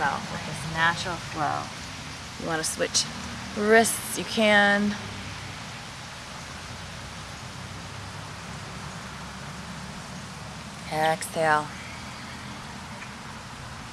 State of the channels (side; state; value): both; identical; correlation 1.00